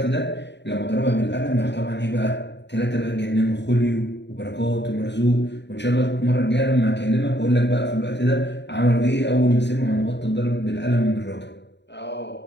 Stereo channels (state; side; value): late; right; 0.51 ms